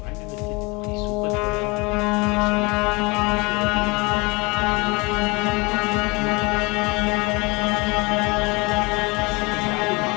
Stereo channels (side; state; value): right; quieter; 26.9 dB